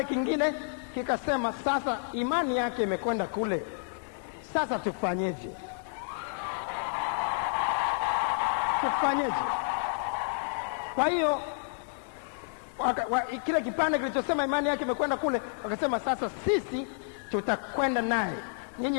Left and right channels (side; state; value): right; silent; 58 dB below the other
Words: kingine kikasema, sasa imani yake imekwenda kule, sasa tufanyeje? Kwa hiyo kile kipande kilichosema imani yake imekwenda kule, wakasema, sasa sisi tutakwenda naye,